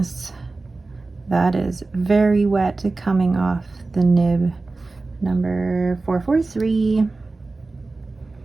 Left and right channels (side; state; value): left; quieter; 3.5 dB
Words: That is very wet coming off the nib, number 443.